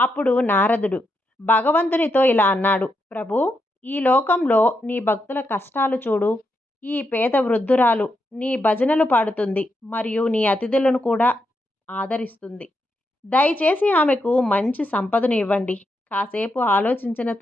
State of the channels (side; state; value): both; normal; correlation 0.83